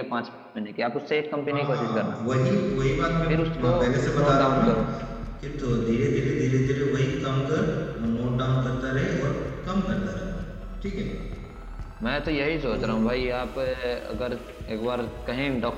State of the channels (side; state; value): both; identical; correlation 1.00